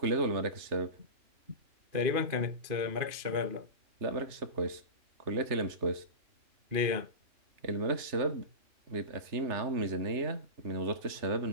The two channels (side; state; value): left; late; 3.3 ms